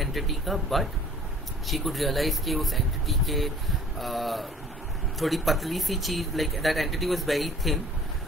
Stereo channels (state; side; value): normal; both; correlation 0.51